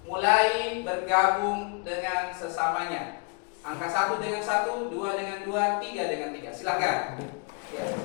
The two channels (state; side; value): quieter; right; 34.4 dB